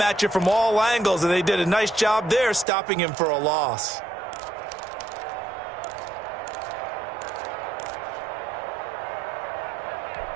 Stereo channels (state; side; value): drops out; left; at 2.7 s